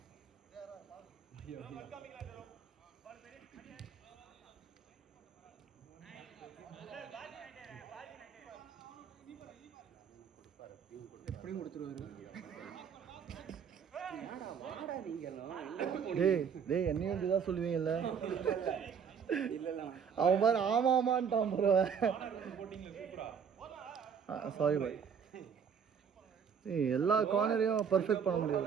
எப்படியும் கொடுத்துருவாரு. டேய் என்னையும் இதுதான் சொல்லுவீங்கல்ல. அவன் பாரு ஆமாமான்ட்டான் ப்ரோ. சாரி பாய். எல்லா கார்னரையும் பர்ஃபெக்ட் பண்ண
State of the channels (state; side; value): quieter; left; 7.1 dB